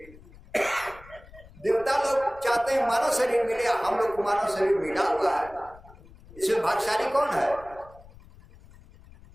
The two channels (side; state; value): left; noise; rumble, 22 dB below the sound